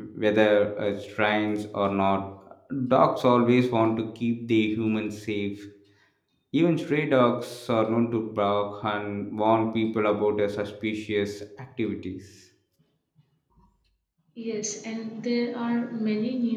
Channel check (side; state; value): both; identical; correlation 1.00